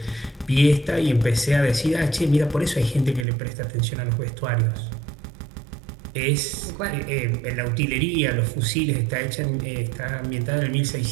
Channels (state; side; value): drops out; left; at 3.2 s